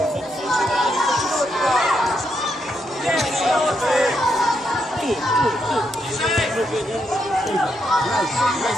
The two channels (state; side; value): normal; both; correlation 0.79